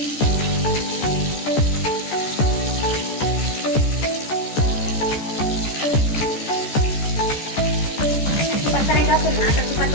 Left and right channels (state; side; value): late; right; 14 ms